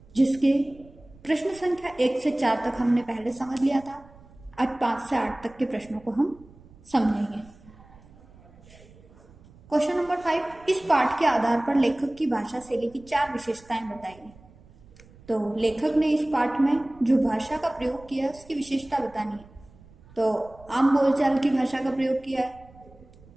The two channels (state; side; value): noise; right; rumble, 24 dB below the sound